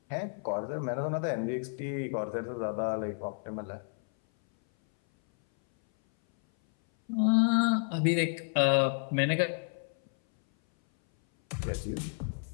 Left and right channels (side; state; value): right; silent; 57 dB below the other